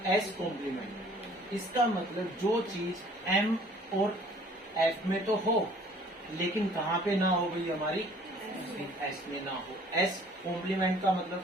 S complement, इसका मतलब जो चीज M और F में तो हो, लेकिन कहाँ पे ना हो गई हमारी, S में ना हो। S कॉम्प्लीमेंट का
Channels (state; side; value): normal; both; correlation 0.54